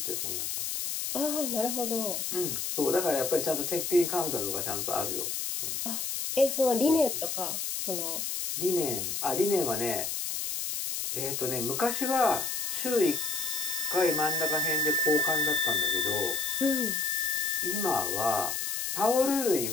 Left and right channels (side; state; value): left; noise; hiss, 2 dB below the sound